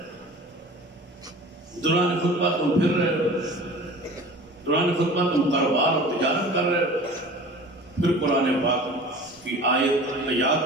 دوران خطبہ تم پھر رہے ہو، دوران خطبہ تم کاروبار اور تجارت کر رہے ہو۔ پھر قرآن پاک کی آیت یاد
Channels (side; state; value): both; normal; correlation 0.41